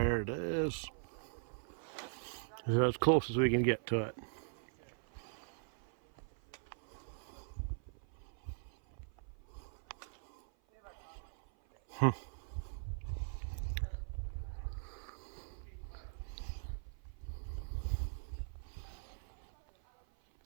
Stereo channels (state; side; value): silent; left; 51 dB below the other